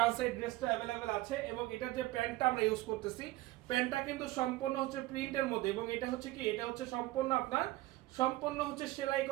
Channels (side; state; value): left; quieter; 18.0 dB